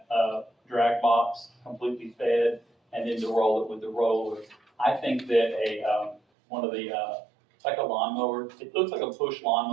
drag box completely fed, and then to roll it with the roller. I think that one of the, like a lawnmower, it looks like a push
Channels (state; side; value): drops out; left; at 6.2 s